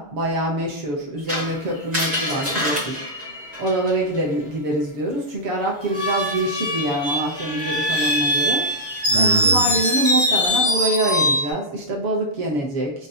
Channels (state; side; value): late; left; 6.8 ms